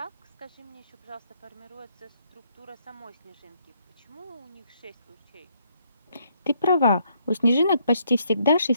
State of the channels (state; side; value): inverted; both; correlation -0.71